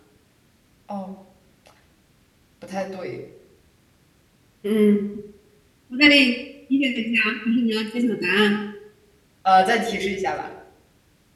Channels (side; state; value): both; identical; correlation 1.00